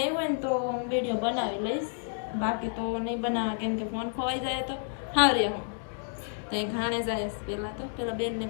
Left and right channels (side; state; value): right; silent; digital silence